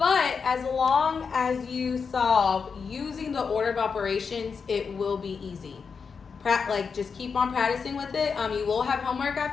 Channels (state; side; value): quieter; right; 5.6 dB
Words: as long as you solve using the order of operations, it will be easy. Just keep on practicing with it. You will have homework